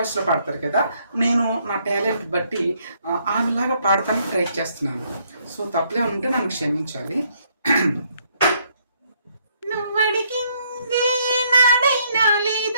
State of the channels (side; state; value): both; inverted; correlation -0.69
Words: పాడతారు కదా, నేను నా టాలెంట్ బట్టి ఆమెలాగా పాడటానికి ట్రై చేస్తున్నాను. సో తప్పులే ఉంటే నన్ను క్షమించాలి. నువ్వడిగింది నాడైనా